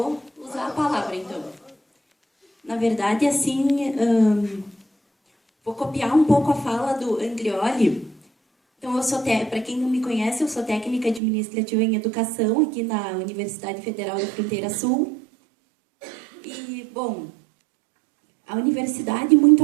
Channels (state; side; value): drops out; left; at 11.2 s